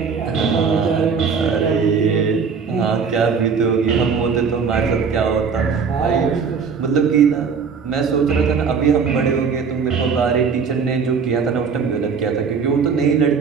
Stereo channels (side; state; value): left; quieter; 5.8 dB